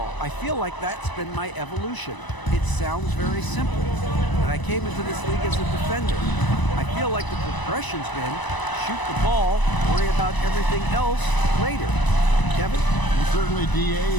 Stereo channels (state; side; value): late; right; 1.0 ms